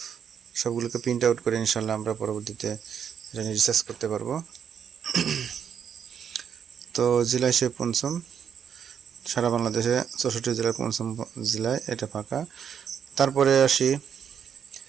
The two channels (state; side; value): quieter; left; 7.9 dB